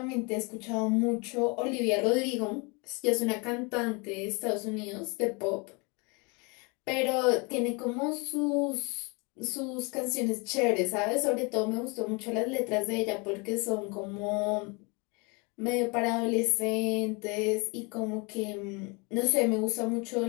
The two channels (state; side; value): quieter; right; 29.9 dB